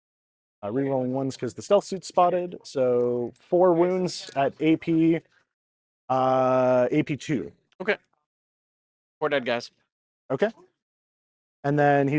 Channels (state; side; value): identical; both; correlation 1.00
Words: Rerolling 1s because the stealth suit's spotted. So 4 wounds at AP, AP 2. Okay. 4 dead guys. Okay. And then